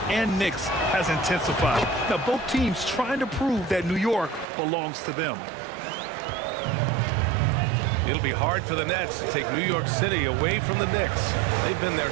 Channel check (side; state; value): left; drops out; at 4.5 s